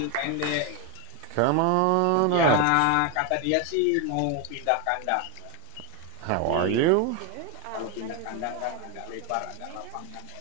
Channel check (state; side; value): different; both; correlation 0.01